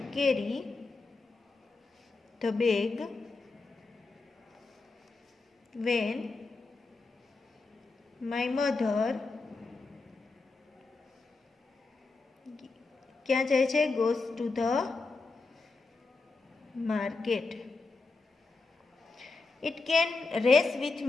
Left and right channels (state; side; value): quieter; right; 3.8 dB